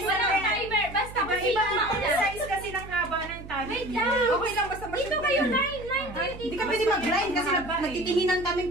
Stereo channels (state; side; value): noise; right; hum, 14 dB below the sound